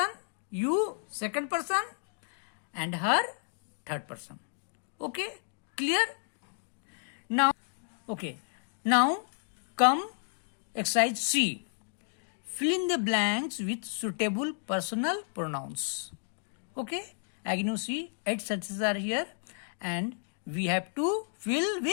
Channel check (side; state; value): right; silent; digital silence